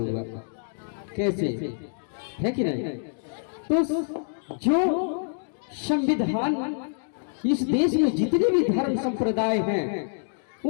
कैसे, है कि नहीं? तो जो संविधान, इस देश में जितने भी धर्म संप्रदाय हैं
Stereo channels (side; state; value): right; silent; digital silence